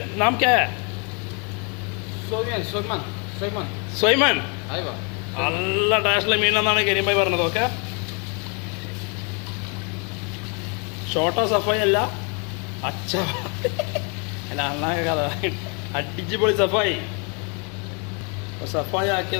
നാം ക്യാ? സോയ്മാൻ. നല്ല ടേസ്റ്റുള്ള മീനെന്നാണ് കരിമ്പായി പറഞ്ഞത്. ഓക്കെ, ഷോർട്ടാ സഫായി അല്ല അച്ഛ അല്ല അണ്ണാക്ക കഥ. അടിപൊളി സഫായി. അപ്പോൾ സഫായി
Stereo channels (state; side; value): quieter; right; 35.8 dB